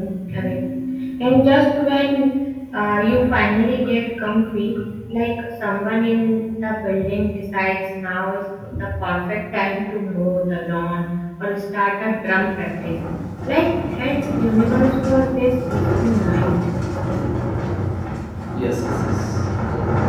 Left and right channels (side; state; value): both; identical; correlation 1.00